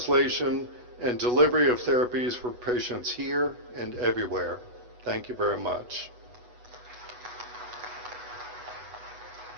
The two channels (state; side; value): late; left; 8.1 ms